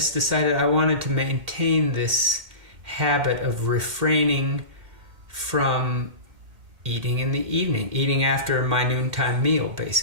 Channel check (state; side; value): late; left; 2.1 ms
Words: decided I wanted to maintain this habit of refraining from eating in the evening, eating after my noontime meal,